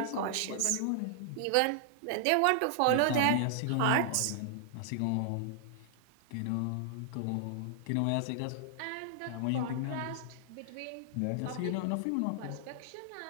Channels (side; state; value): both; different; correlation -0.01